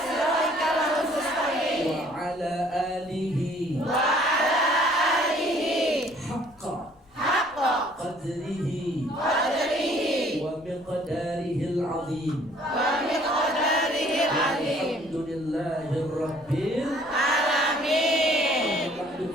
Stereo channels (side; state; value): left; noise; rumble, 30 dB below the sound